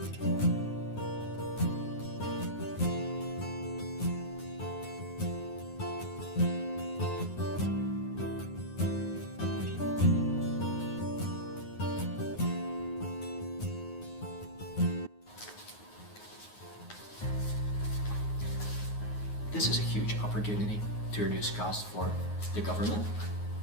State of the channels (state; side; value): late; right; 9.6 ms